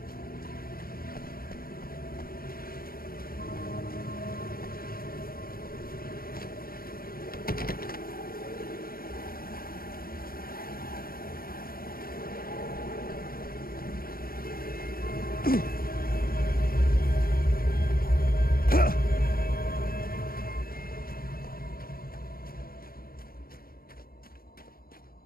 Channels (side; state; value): right; late; 0.43 ms